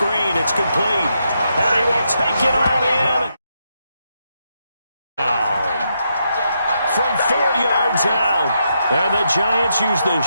It's complete. And he will take it on in. From 4 yards out. And the Giants use the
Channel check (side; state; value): both; inverted; correlation -0.81